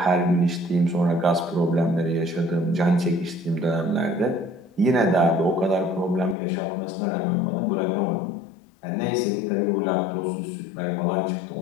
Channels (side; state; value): right; drops out; at 6.4 s